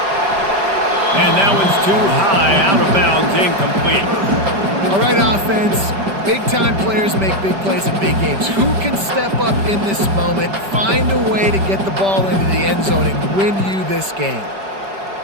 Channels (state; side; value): late; left; 5.1 ms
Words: And that one's too high, out of bounds, incomplete. All right, offense. Big-time players make big plays in big games. Who can step up in this moment, find a way to get the ball into the end zone and win you this game?